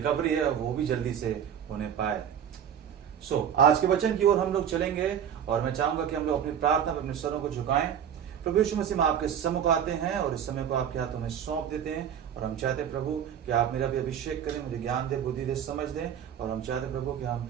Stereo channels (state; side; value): quieter; left; 8.8 dB